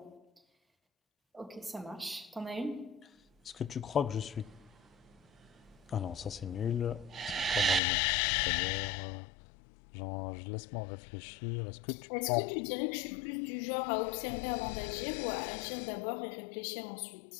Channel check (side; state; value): right; drops out; at 7.8 s